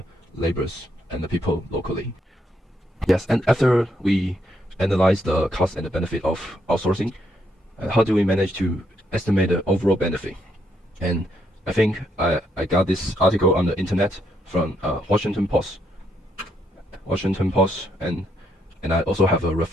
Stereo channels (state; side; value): normal; both; correlation 0.75